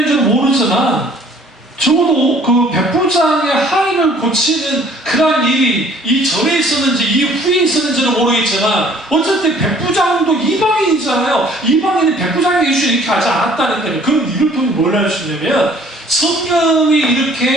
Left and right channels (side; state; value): both; normal; correlation 0.56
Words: 모르지만 적어도 그 백부장의 하인을 고치는 그러한 일이 이 전에 있었는지 이 후에 있었는지는 모르겠지만 어쨌든 백부장도 이방인이잖아요. 이방인이 백부장의 이슈를 이렇게 하지 않았다니까요. 그럼 이를 통해 뭘 할 수 있냐면 성령이